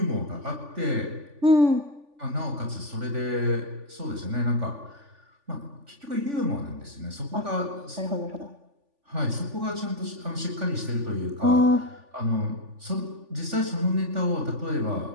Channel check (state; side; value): late; left; 3.5 ms